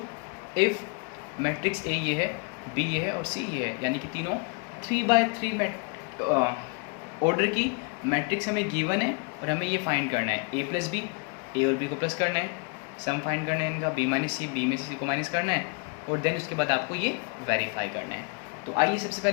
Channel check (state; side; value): quieter; right; 33.4 dB